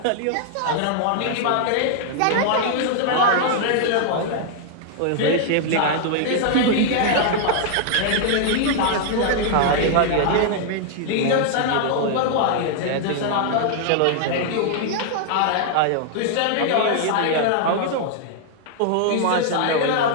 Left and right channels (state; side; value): different; both; correlation 0.00